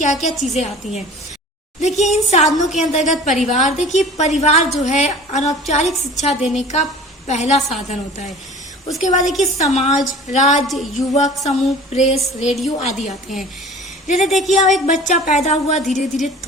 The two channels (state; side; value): normal; both; correlation 0.43